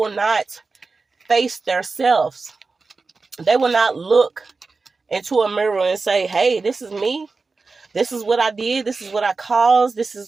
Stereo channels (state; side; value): quieter; left; 4.1 dB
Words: not face themselves. They will not look into a mirror and say, hey, this is me. This is what I did. This is what I caused. This